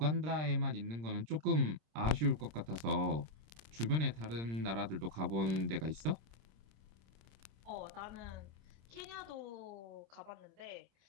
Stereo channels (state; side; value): late; left; 26 ms